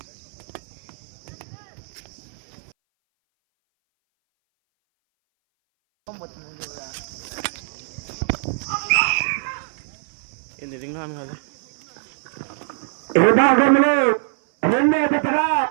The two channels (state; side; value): silent; left; 59 dB below the other